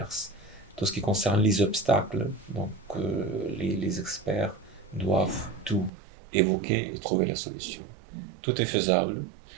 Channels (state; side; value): drops out; left; at 5.9 s